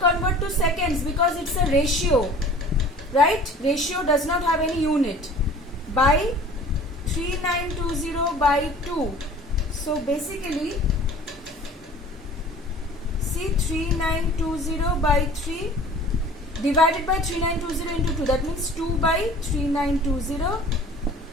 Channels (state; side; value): normal; both; correlation 0.45